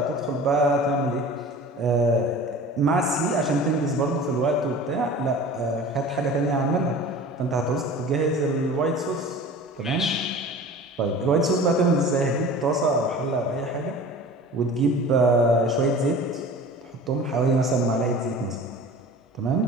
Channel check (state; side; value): normal; both; correlation 0.40